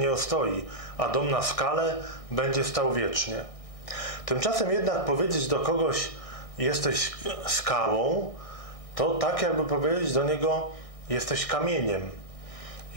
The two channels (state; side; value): late; right; 1.6 ms